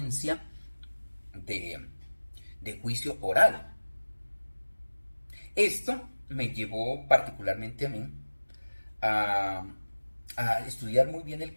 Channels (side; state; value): both; inverted; correlation -1.00